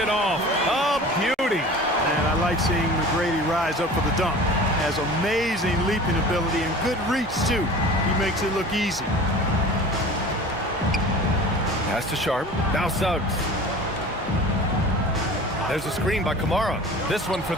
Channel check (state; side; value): normal; both; correlation 0.40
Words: off. A beauty. And I like seeing McGrady rise up for the dunk. Has amazing leaping ability and good reach, too. He makes it look easy. Pass to Sharp. Now Suggs. There's a screen by Kamara. This one for